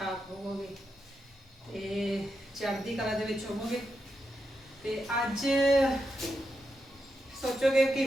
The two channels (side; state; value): both; normal; correlation 0.86